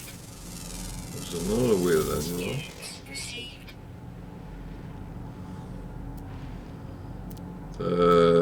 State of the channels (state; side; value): identical; both; correlation 1.00